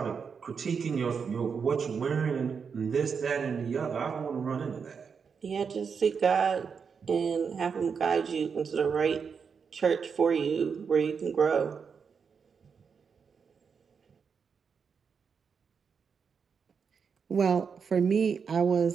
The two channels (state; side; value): quieter; left; 6.1 dB